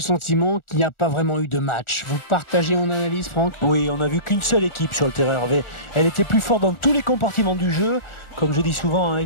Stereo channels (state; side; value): late; right; 1.4 ms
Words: sentiment qu'il n'y a pas vraiment eu de match. Vous partagez mon analyse, Franck? Oui, on n'a vu qu'une seule équipe sur le terrain, Hervé. Elle était plus forte dans tous les compartiments du jeu. Comme je dis souvent, hein,